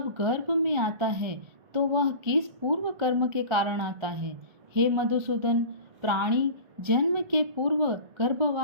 गर्भ में आता है तो वह किस पूर्व कर्म के कारण आता है। हे मधुसूदन, प्राणी जन्म के पूर्व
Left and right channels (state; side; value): late; left; 1.4 ms